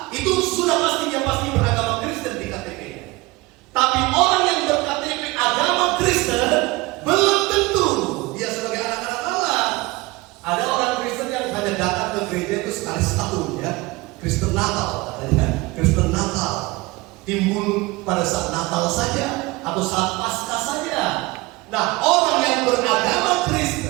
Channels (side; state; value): left; quieter; 22.0 dB